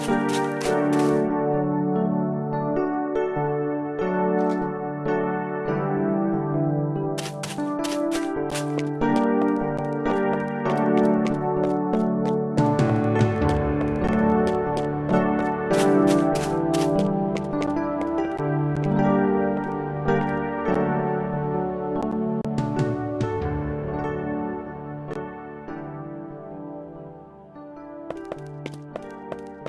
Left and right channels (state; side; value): identical; both; correlation 1.00